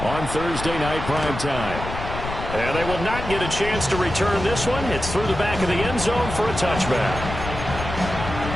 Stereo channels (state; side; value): noise; left; rumble, 7 dB below the sound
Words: on Thursday night primetime. And they will not get a chance to return this one. It's through the back of the end zone for a touchback.